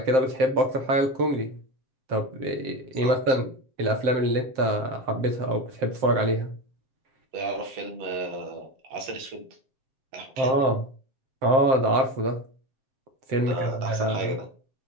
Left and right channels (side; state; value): left; late; 7.6 ms